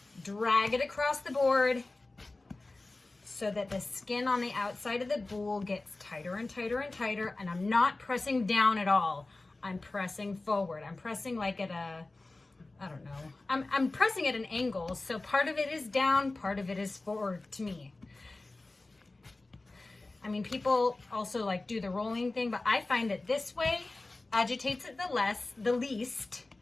drag it across the board so that the skin on the outside of the boule gets tighter and tighter and tighter, and I'm not pressing down at all. I'm pressing forward. I'm pressing like at a, I don't know. I'm pressing at an angle, so part of it is down, part of it is forward to me. I mean, people also like do the rolling thing, but I find that this way agitates it the least,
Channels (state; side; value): quieter; right; 3.1 dB